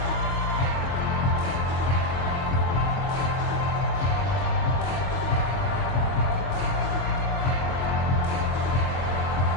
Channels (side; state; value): right; late; 22 ms